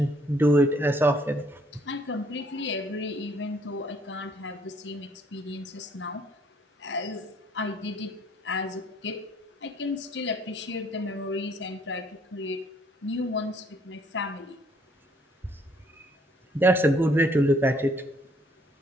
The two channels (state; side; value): normal; both; correlation 0.64